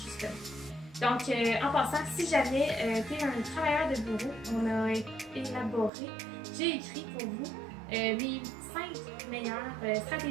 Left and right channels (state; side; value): drops out; left; at 5.9 s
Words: justement. Donc, en passant, si jamais tu es un travailleur de bureau, on a élaboré, j'ai écrit pour vous mes 5 meilleures